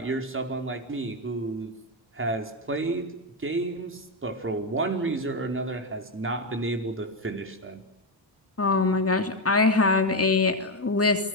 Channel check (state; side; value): normal; both; correlation 0.08